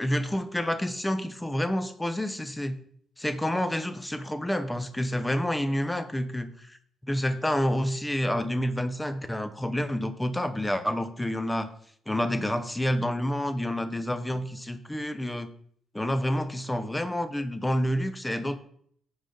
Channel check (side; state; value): both; normal; correlation 0.96